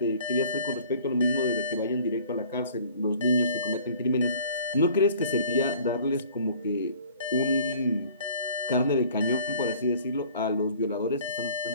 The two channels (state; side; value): inverted; both; correlation -0.51